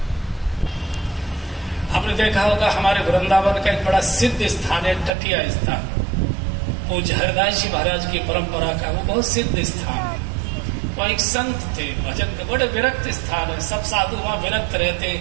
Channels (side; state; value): left; drops out; at 5.1 s